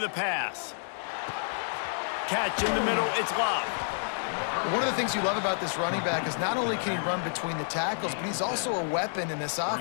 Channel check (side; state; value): right; silent; digital silence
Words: a pass. Catch in the middle, it's Love. One of the things you love about this running back is not only can he run between the tackles, but he's also a weapon in this